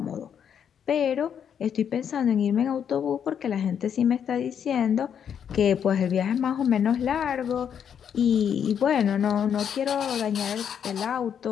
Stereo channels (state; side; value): quieter; right; 8.3 dB